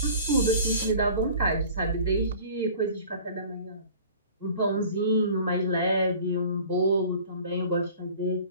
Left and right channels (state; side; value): inverted; both; correlation -0.46